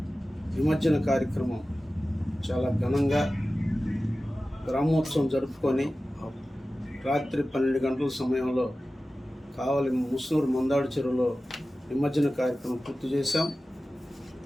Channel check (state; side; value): normal; both; correlation 0.95